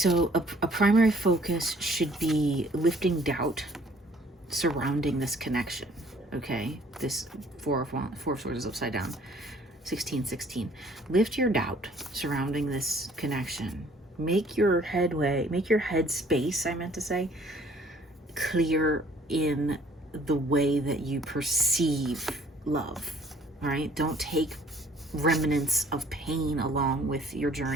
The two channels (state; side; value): normal; both; correlation 0.57